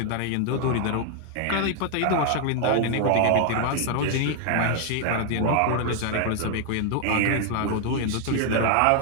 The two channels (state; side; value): different; both; correlation 0.00